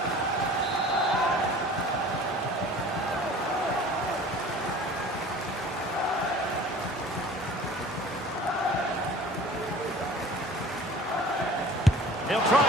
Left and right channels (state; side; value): normal; both; correlation 0.45